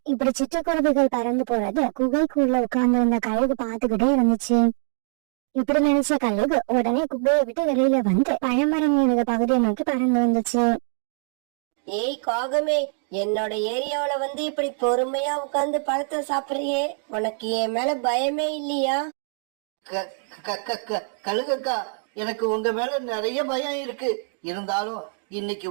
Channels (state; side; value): silent; left; 60 dB below the other